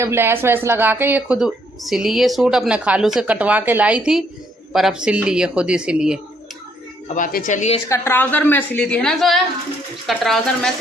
लैस वैस लगा के ये खुद सिली, ये सूट अपने खालू से कटवा के लाई थी, पर अब सिल ली है, खुद ही सिली है। अब आके चलिए, इसका ट्राउज़र मैं सिली थी, है ना जोया, इसका ट्राउज़र मैं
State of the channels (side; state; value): both; normal; correlation 0.69